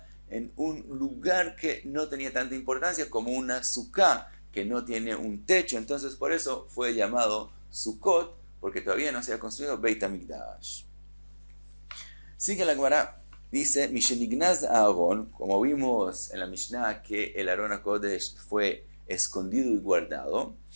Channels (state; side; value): inverted; both; correlation -1.00